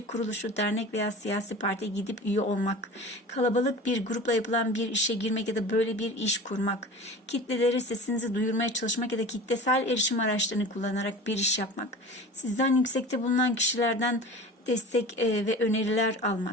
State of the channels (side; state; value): both; normal; correlation 0.36